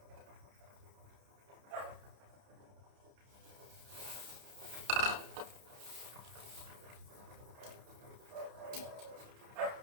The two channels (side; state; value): left; late; 30 ms